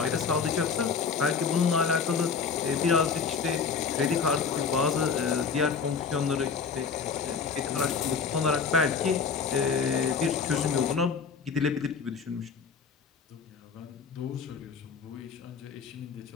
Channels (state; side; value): quieter; right; 5.7 dB